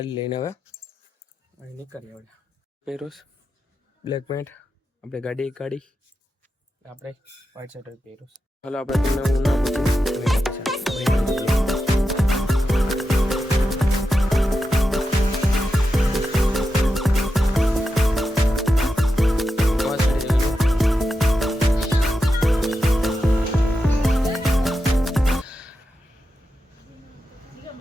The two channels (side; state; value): both; normal; correlation 0.89